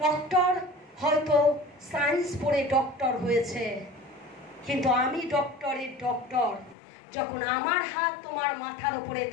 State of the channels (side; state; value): right; drops out; at 6.8 s